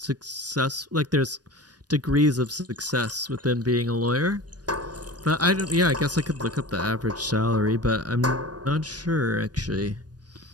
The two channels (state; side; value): late; left; 0.69 ms